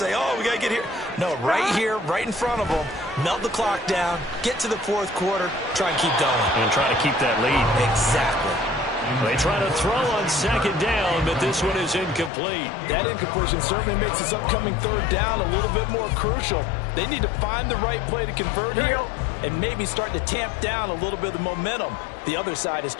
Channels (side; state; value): right; drops out; at 12.3 s